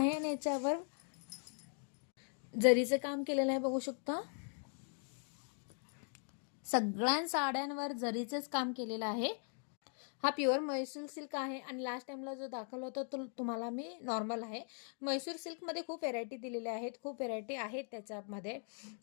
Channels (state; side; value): silent; right; 51 dB below the other